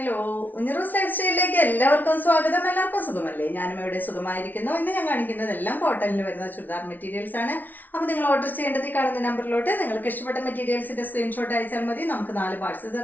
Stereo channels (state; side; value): late; right; 0.082 ms